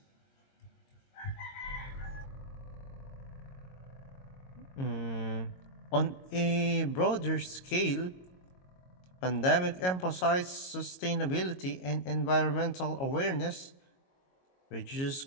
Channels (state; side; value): late; right; 22 ms